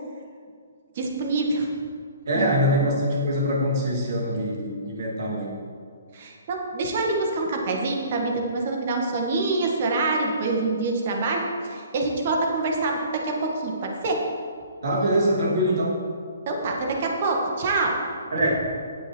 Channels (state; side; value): inverted; both; correlation -0.49